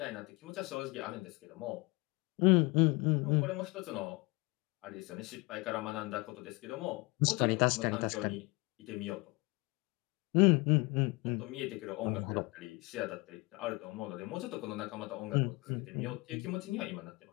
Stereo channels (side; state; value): right; quieter; 25.5 dB